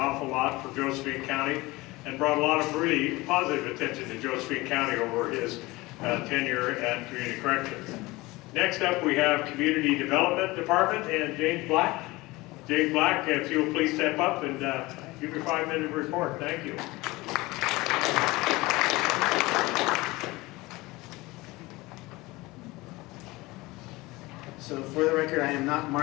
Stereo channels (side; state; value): right; quieter; 21.2 dB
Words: lot for Josephine County, and brought a lot of really positive attention to Josephine County over his tenure at Community Corrections. Next up, we have Community Development Department and James Black. James Black, if you'll please step up and give your 5-minute report. Thank you. So for the record, I am not